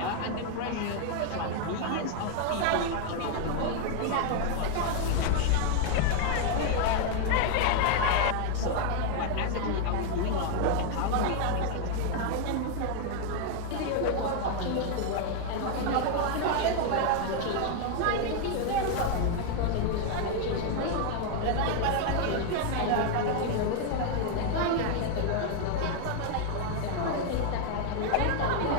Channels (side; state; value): both; different; correlation 0.00